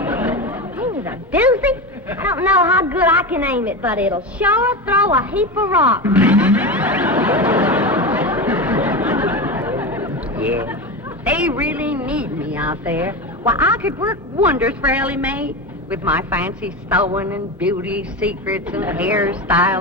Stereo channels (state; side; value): normal; both; correlation 0.21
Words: Ain't it a doozy? I don't know how good I can aim it, but it'll sure throw a heap of rocks. Yeah. They really need me out there. Why, I could work wonders for Ellie Mae with my fancy sewing and beauty secrets and